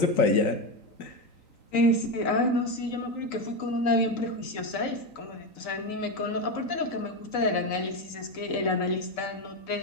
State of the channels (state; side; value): late; right; 3.9 ms